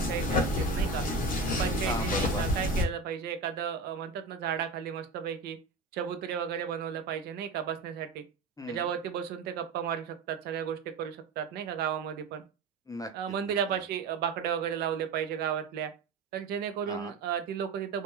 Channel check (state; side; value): quieter; left; 3.7 dB